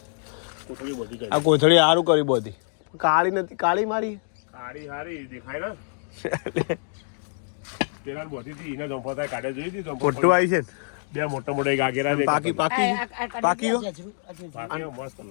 કોથળી બધી આ કોથળી સારું કરી બધી. કાળી નથી કાળી મારી. કાળી હારી દેખાય ને પેલા બધી હતી એને જંપો થાય કાઢે જોઈ હતી. મોટું આવી છે ને બે મોટા મોટા ગાગેરા પાકી પાકી પાકી મસ્ત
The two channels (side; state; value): right; silent; digital silence